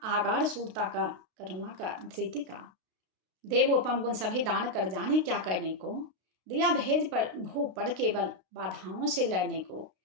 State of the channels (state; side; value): late; left; 32 ms